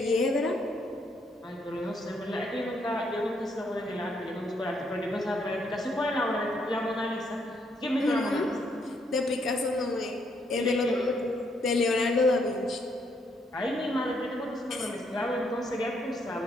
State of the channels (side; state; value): both; normal; correlation 0.73